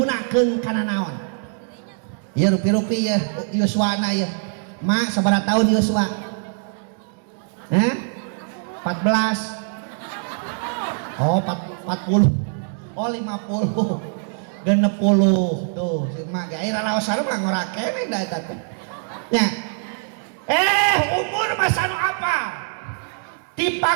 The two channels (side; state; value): left; silent; digital silence